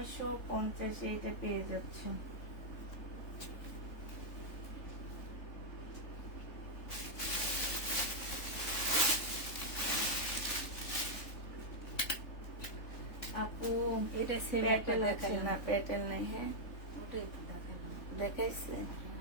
এটা পেয়ে যাচ্ছ। আপু এটা সেম একটা প্যাটেল আছে দেখালাম। না? প্যাটেল নেই। হ্যাঁ ওটাই তো দেখালাম। দেখাইছে,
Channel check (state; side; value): late; right; 3.8 ms